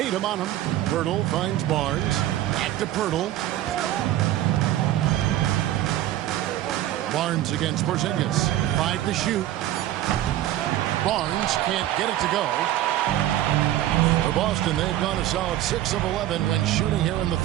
on him. Pirtle finds Barnes. Back to Pirtle. Barnes against Porzingis. 5 to shoot. Barnes can't get it to go. For Boston, they've gone a solid 6 of 11 when shooting here in the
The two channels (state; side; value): quieter; left; 13.6 dB